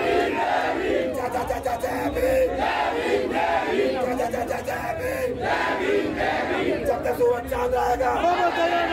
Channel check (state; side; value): identical; both; correlation 1.00